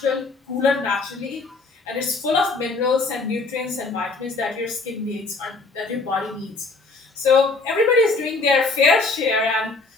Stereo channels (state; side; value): quieter; right; 3.8 dB